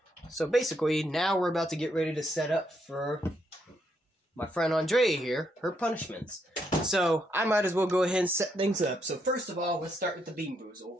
basically, now we're about to get ready to set up for my friend Andrea here, her punishments. So, I might as well go ahead and set things up. So, first of all, let's start with the Bean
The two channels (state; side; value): normal; both; correlation 0.76